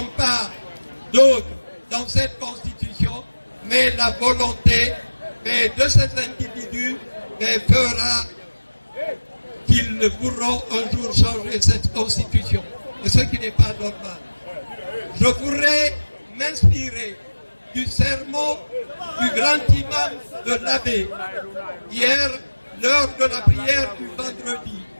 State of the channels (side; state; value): both; inverted; correlation -1.00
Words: pas d'autre dans cette constitution, mais la volonté de ces individus fera qu'ils pourront un jour changer cette constitution. Et ce qui n'est pas normal. Je voudrais m'inspirer du sermon du grand imam de l'Abbé, hier, lors de la prière du vendredi,